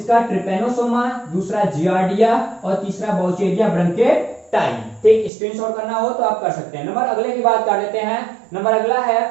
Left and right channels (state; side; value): drops out; left; at 5.3 s